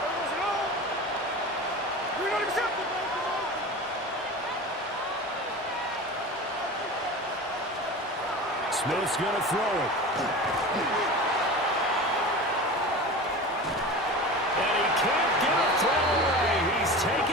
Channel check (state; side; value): normal; both; correlation 0.32